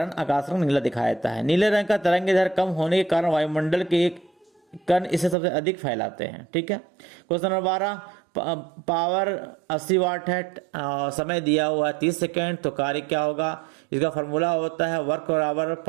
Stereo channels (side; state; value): left; drops out; at 5.4 s